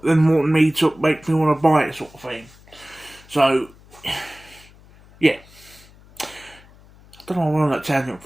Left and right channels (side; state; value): left; noise; hum, 25 dB below the sound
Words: than me to make me want to buy it, sort of thing. So, yeah. I don't know what I'm on that tangent